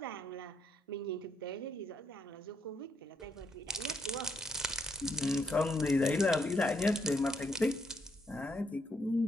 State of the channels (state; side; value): normal; both; correlation 0.75